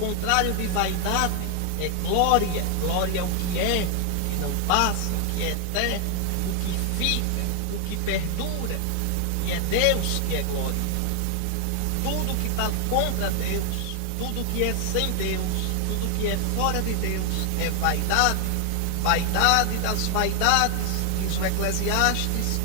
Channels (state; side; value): different; both; correlation 0.01